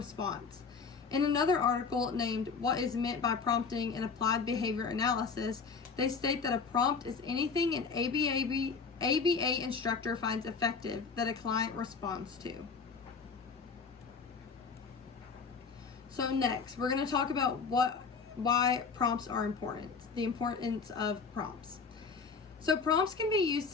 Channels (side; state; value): right; quieter; 5.2 dB